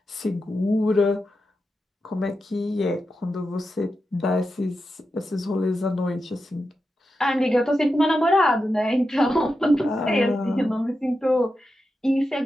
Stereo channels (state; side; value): normal; both; correlation 0.89